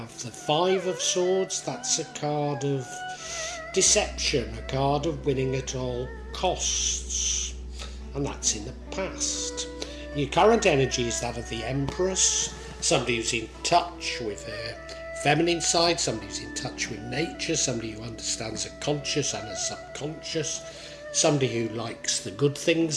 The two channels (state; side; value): identical; both; correlation 1.00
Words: the Five of Swords. That's a card of deception, a card of winning at all costs, and that's in the past. Your current energy is that of the Empress, somebody who's in touch with her feminine side, somebody who's in touch with nature, somebody who understands a conscious and a subconscious, somebody who likes the good